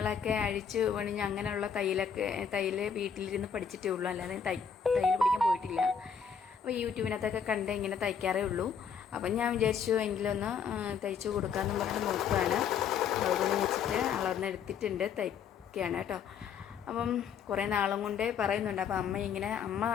അഴിച്ച് പണിഞ്ഞ് അങ്ങനെയുള്ള തയ്യൽ വീട്ടിലിരുന്ന് പഠിച്ചിട്ടേ ഉള്ളൂ, അല്ലാതെ തയ്യൽ പഠിക്കാൻ പോയിട്ടില്ല. അപ്പോൾ യൂട്യൂബിനകത്തൊക്കെ കണ്ട് ഇങ്ങനെ തയ്ക്കാറേ ഉള്ളൂ. അപ്പം ഞാൻ വിചാരിച്ചു എങ്കിലൊന്ന് തയ്ച്ചു കൊടുക്കാമെന്നും പറഞ്ഞിട്ട് നോക്കുകയാണ്. അതുകൊണ്ട് വെച്ചിട്ട് അളന്നെടുത്തിട്ടുണ്ട്, തയ്ക്കുകയാണ് കേട്ടോ. അപ്പം കുറേ നാളും കൊണ്ടേ പറയുന്നുണ്ട്. അപ്പം അമ്മ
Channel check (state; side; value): quieter; right; 7.1 dB